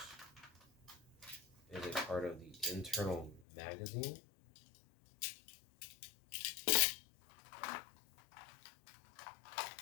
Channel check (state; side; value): drops out; right; at 3.5 s